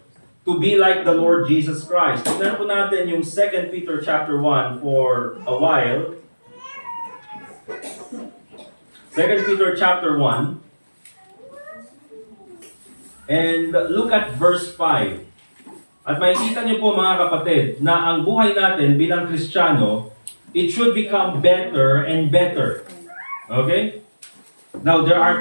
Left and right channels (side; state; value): both; inverted; correlation -1.00